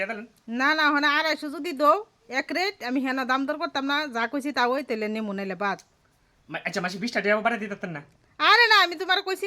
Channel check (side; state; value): both; identical; correlation 1.00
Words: দিলেন। না না, ওখানে 250 যদি দৌ এক রেট, আমি হেনা দাম দর করতাম না, যা কইছি তা ওই তেলে নেমু নাইলে বাদ। আচ্ছা মাসি 20 টাকা বাড়াই দিতেন না? আরে না, আমি তোমার কইছি